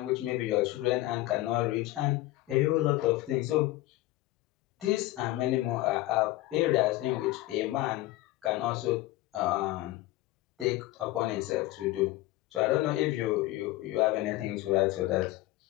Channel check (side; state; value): right; quieter; 17.4 dB